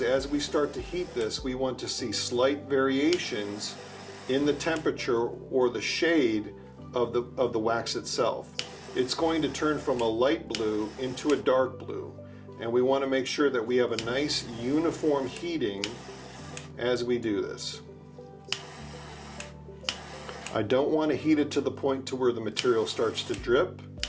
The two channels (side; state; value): both; identical; correlation 1.00